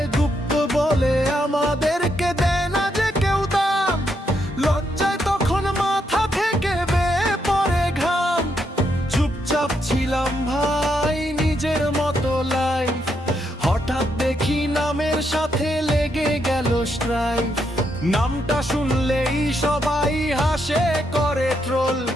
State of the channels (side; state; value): both; normal; correlation 0.79